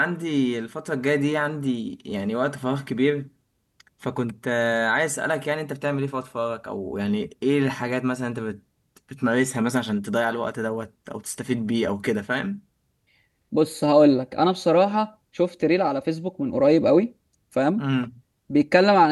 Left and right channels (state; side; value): identical; both; correlation 1.00